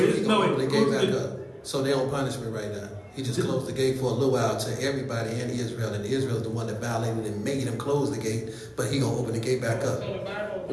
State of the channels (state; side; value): identical; both; correlation 1.00